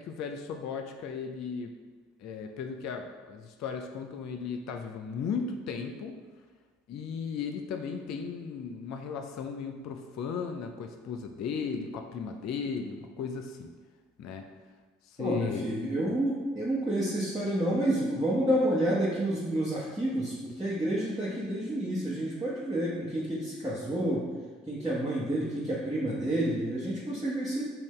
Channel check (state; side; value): normal; both; correlation 0.66